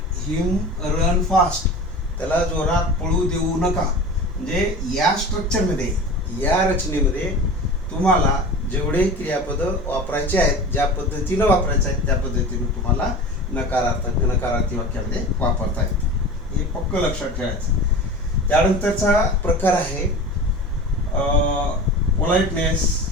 him run fast, त्याला जोरात पळू देऊ नका. म्हणजे या स्ट्रक्चरमध्ये, या रचनेमध्ये तुम्हाला जेवढे क्रियापद वापरायचे आहेत, ज्या पद्धतीनं वापरायचे आहेत त्या पद्धतीनं तुम्हाला नकारार्थी वाक्यामध्ये वापरता येते. हे पक्क लक्षात ठेवायचं. त्यानंतरचा प्रकार आहे पोलाइटनेस,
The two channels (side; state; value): both; normal; correlation 0.34